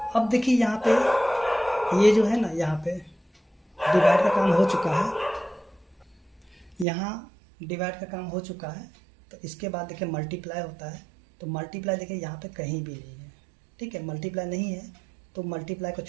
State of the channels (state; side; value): drops out; left; at 6.9 s